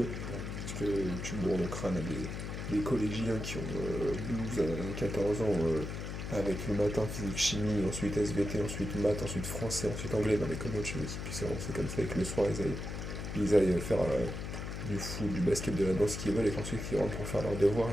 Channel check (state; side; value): noise; left; hum, 6 dB below the sound